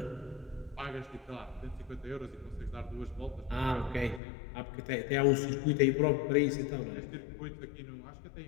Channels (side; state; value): right; drops out; at 4.2 s